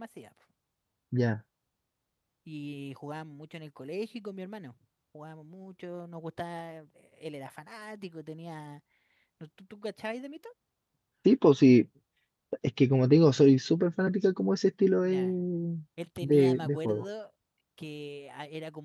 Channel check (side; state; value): both; identical; correlation 1.00